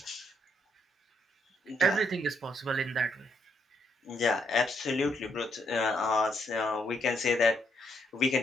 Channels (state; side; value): normal; both; correlation 0.74